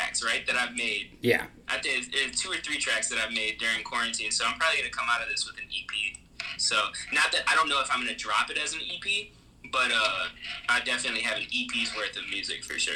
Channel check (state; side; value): identical; both; correlation 1.00